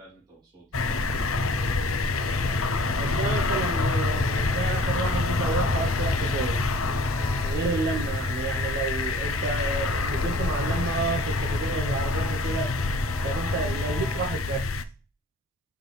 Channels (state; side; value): normal; both; correlation 0.49